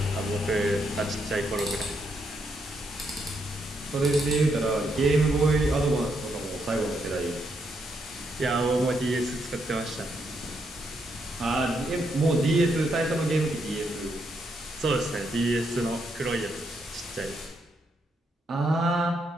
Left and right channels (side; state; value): both; normal; correlation 0.78